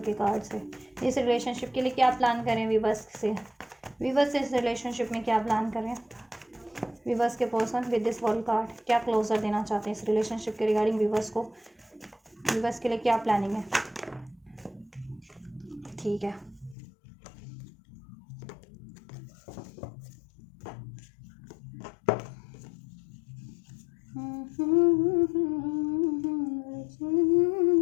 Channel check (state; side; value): drops out; right; at 16.8 s